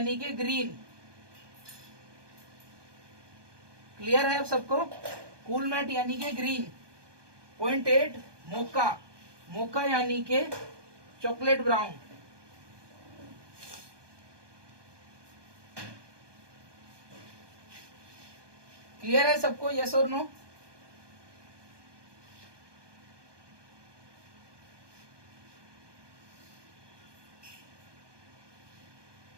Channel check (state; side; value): late; left; 1.2 ms